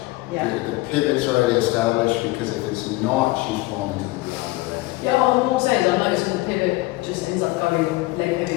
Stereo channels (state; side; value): quieter; right; 20.6 dB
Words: Yeah. The pivot's already established, because if it's not, she's falling to the ground already. Yeah, all I'm saying is I'm noticing the pivot just ends up going leg